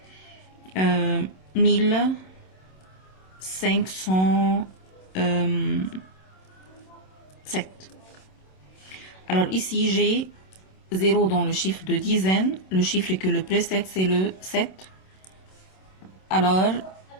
1507. Alors ici, j'ai 0 dans le chiffre de dizaine. Le chiffre que le précède, c'est le 7. Alors,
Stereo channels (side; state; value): right; late; 27 ms